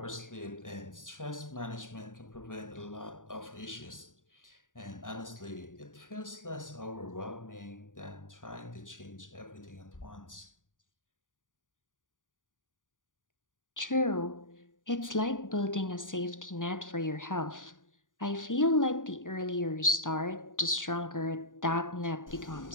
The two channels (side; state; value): right; late; 0.88 ms